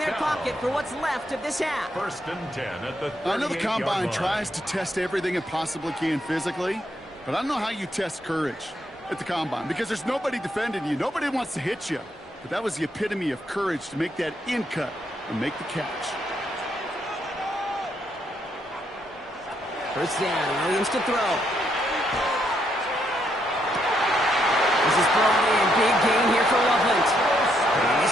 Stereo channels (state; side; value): normal; both; correlation 0.76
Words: pocket for what's left of this half. 1st and 10 at the 38-yard line. I know the Combine tries to test everything it possibly can physically, but I don't know how you test courage at the Combine, because there's nobody defending you. Nobody wants to hit you. But that was the epitome of courage to make that in cut and make the catch. First down, Williams to throw. This is brought in. Big gain here for Loveland. And